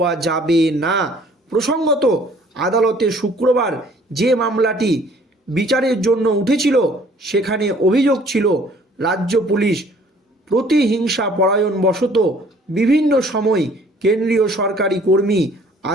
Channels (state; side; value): normal; both; correlation 0.56